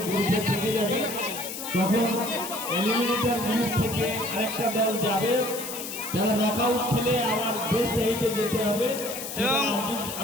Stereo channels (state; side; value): noise; left; hiss, 8 dB below the sound